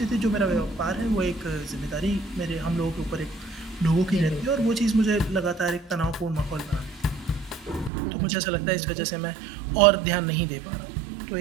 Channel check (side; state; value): left; drops out; at 7.9 s